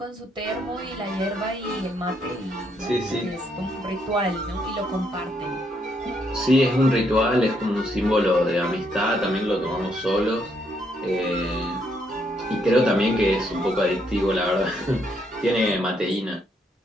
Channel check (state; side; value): normal; both; correlation 0.74